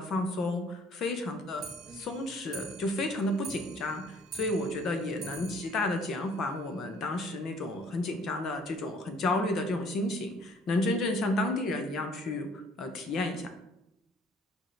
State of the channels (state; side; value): normal; both; correlation 0.57